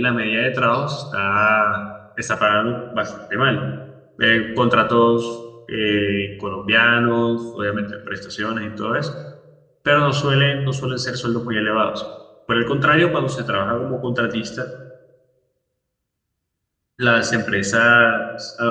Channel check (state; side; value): identical; both; correlation 1.00